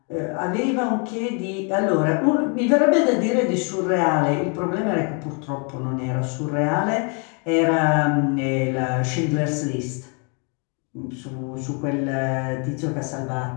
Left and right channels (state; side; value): quieter; right; 36.9 dB